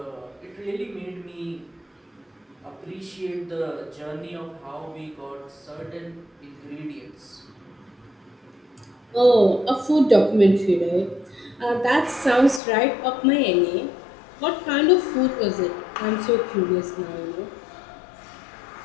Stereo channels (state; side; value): drops out; right; at 12.6 s